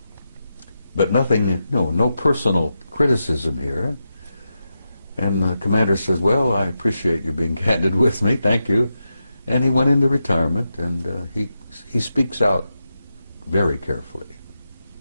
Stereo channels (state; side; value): inverted; both; correlation -0.88